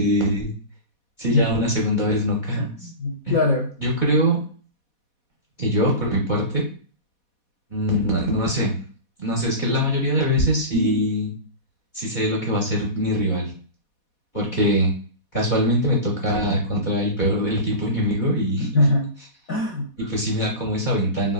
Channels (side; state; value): right; late; 4.1 ms